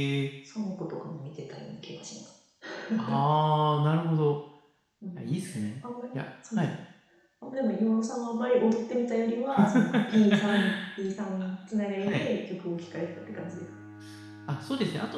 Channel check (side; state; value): both; identical; correlation 1.00